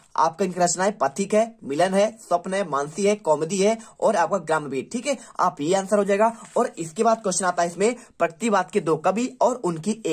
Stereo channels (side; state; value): both; identical; correlation 1.00